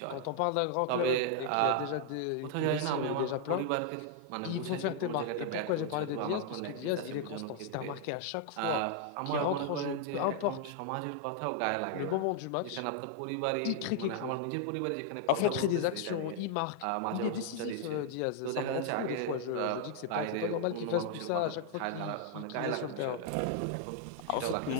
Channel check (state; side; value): different; both; correlation 0.00